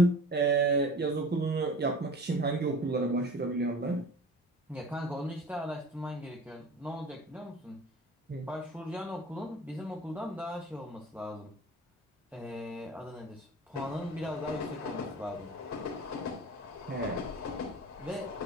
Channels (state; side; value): normal; both; correlation 0.40